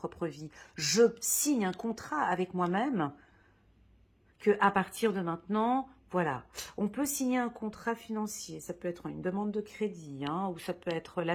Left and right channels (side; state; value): both; identical; correlation 1.00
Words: vie. Je signe un contrat avec moi-même que à partir de maintenant, voilà. On peut signer un contrat financier, ça peut être une demande de crédit, hein, ou ça peut être